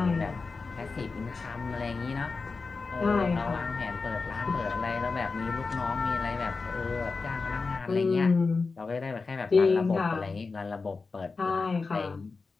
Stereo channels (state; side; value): quieter; right; 4.3 dB